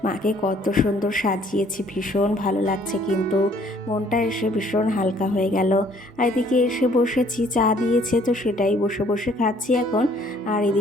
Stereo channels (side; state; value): both; normal; correlation 0.61